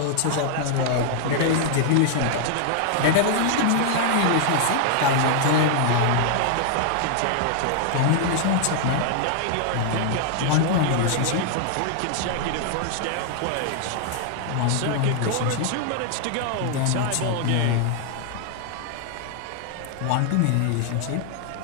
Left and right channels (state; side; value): different; both; correlation -0.01